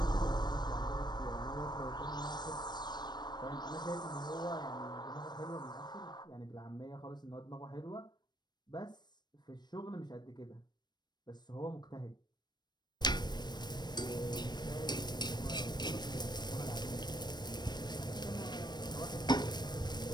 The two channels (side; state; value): right; late; 0.21 ms